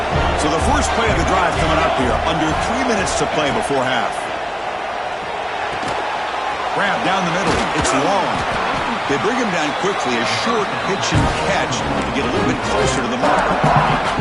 So the first play of the drive coming up here. Under 3 minutes to play before half. Grab down the middle. It's long. They bring him down quickly, a short pitch and catch to get a little bit closer to the mark.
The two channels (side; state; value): both; identical; correlation 1.00